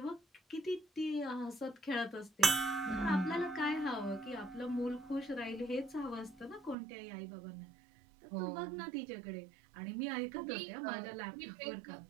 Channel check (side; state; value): left; drops out; at 6.8 s